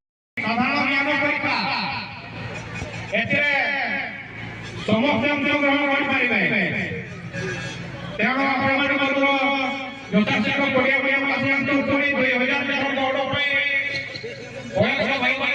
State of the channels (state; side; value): identical; both; correlation 1.00